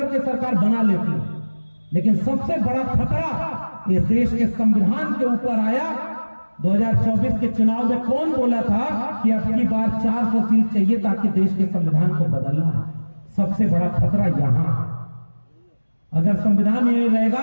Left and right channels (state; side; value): inverted; both; correlation -1.00